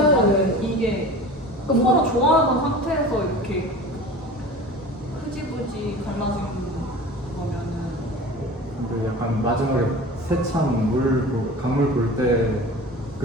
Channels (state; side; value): normal; both; correlation 0.37